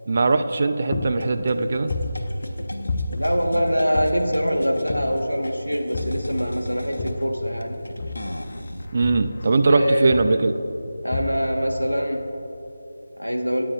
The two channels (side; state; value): both; inverted; correlation -0.94